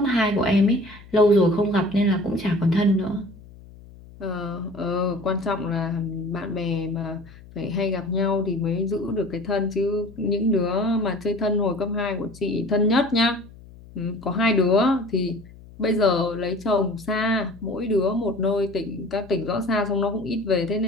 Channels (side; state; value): left; noise; hum, 20 dB below the sound